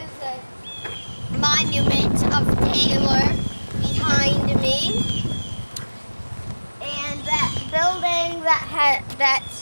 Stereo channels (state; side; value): inverted; both; correlation -1.00